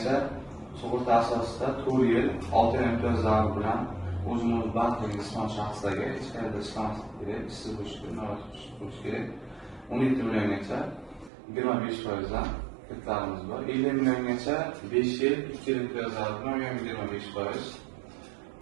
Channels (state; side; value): drops out; left; at 11.3 s